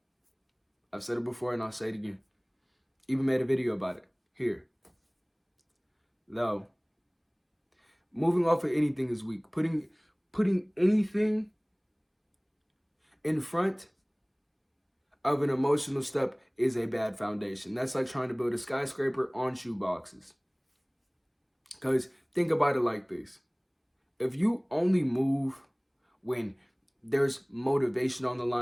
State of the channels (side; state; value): both; identical; correlation 1.00